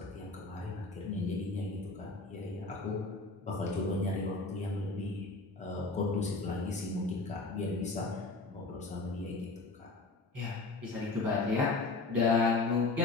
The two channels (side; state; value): right; quieter; 3.5 dB